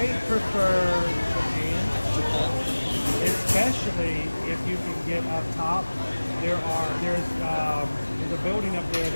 prefer Japan, especially if you can get up top. There's a building up there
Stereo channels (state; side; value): inverted; both; correlation -1.00